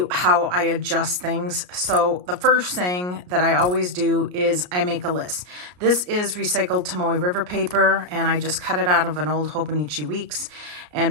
how I adjust things. So the first thing that I always do is I make a list. This is recycled Tomoe River paper, and I just cut it out of an old Hobonichi Weeks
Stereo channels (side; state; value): left; late; 33 ms